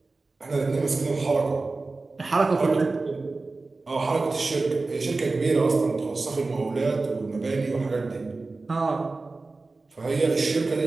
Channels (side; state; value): left; quieter; 3.6 dB